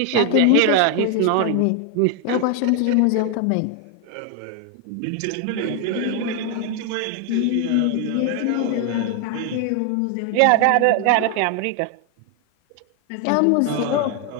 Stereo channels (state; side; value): different; both; correlation 0.00